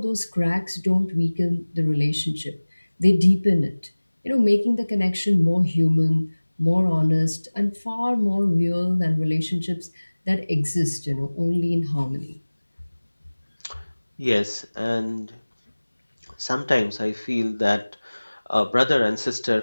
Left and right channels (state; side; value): inverted; both; correlation -1.00